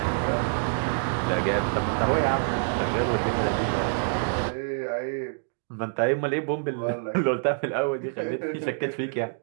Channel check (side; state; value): left; silent; digital silence